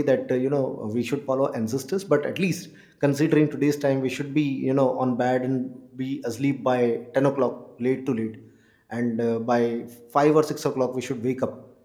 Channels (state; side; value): identical; both; correlation 1.00